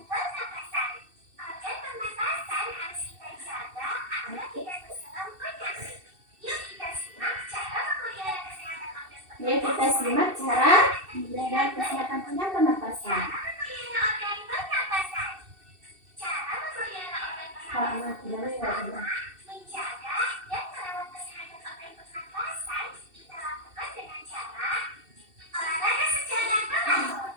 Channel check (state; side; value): late; left; 2.7 ms